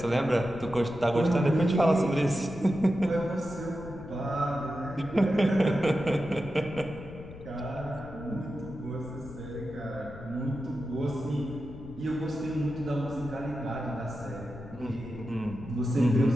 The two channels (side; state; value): left; noise; rumble, 15 dB below the sound